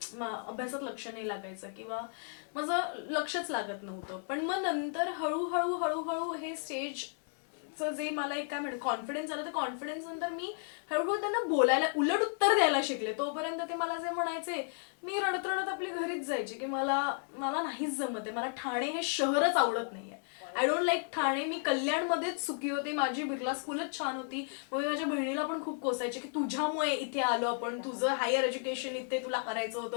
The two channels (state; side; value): silent; right; 55 dB below the other